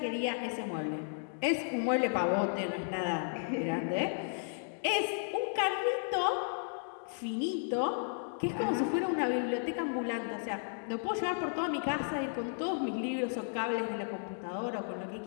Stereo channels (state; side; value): silent; right; digital silence